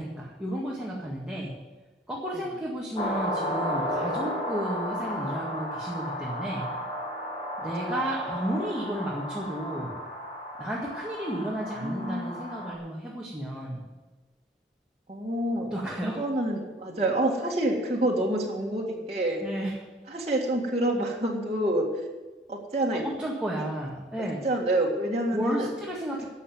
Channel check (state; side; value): normal; both; correlation 0.50